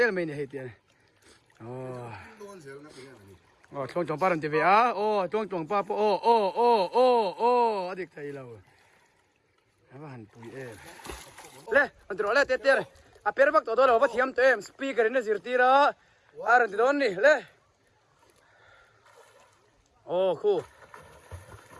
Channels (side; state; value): both; identical; correlation 1.00